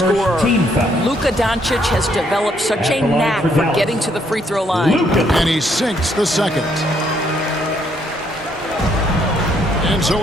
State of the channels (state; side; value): normal; both; correlation 0.70